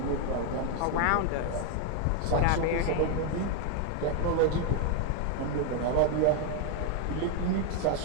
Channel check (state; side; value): different; both; correlation 0.01